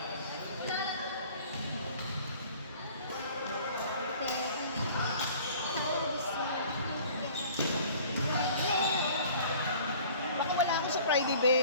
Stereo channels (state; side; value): inverted; both; correlation -0.49